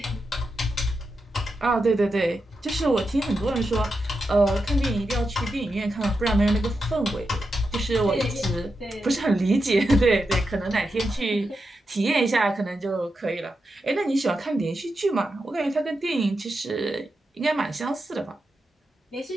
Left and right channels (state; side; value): normal; both; correlation 0.88